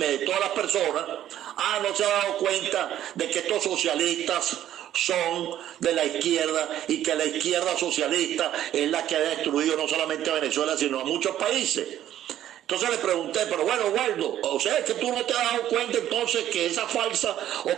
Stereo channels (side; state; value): left; quieter; 11.8 dB